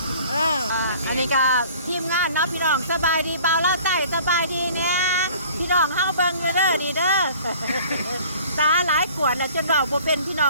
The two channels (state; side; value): inverted; both; correlation -0.50